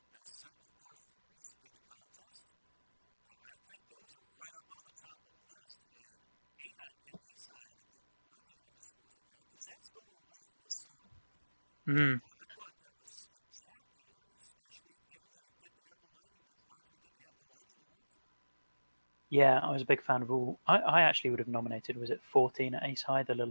best set of par threes in the contest, I think those are right up on the top of the list. And 8 at Ace High, I think, really underscores a fact, because that's going away from the sun. And I thought that was spectacular, especially given that it didn't have the lighting. Andre didn't have the lighting to work for him. Yeah, I was a big fan of all. I actually would have nominated, was it 14 at Ace High, the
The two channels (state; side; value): inverted; both; correlation -1.00